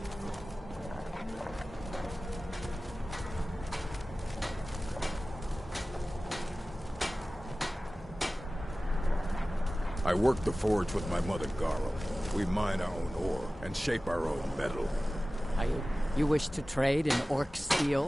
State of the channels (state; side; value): normal; both; correlation 0.96